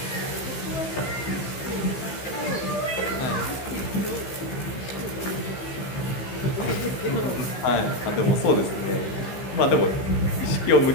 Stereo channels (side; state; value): right; late; 15 ms